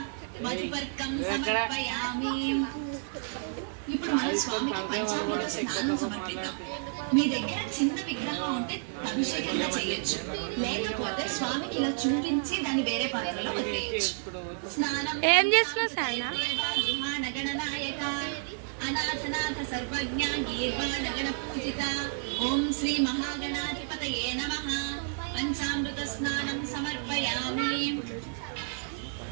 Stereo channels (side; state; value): left; silent; digital silence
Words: మధుపర్కం సమర్పయామి. ఇప్పుడు మన స్వామికి పంచామృత స్నానం సమర్పిద్దాం. మీ దగ్గర చిన్న విగ్రహం ఉంటే అభిషేకంగా చేయొచ్చు, లేకపోతే స్వామికి ఇలా చూపించి దాన్ని వేరే పాత్రలో వదిలేయచ్చు. స్నానం ఏం చేస్తున్నావు? గణనాయక అనాథనాథ సర్వజ్ఞ గీర్వాణగణ పూజిత. ఓం శ్రీ మహాగణాధిపతయే నమః. పంచామృత స్నానం సమర్పయామి.